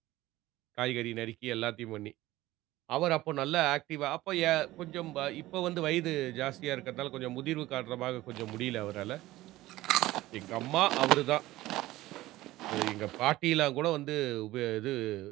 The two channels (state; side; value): quieter; left; 17.0 dB